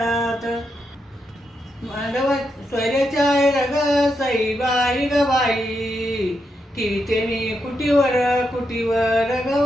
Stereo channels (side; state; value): both; normal; correlation 0.83